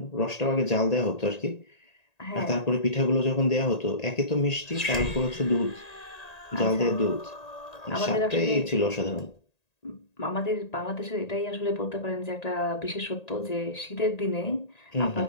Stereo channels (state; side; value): late; right; 1.9 ms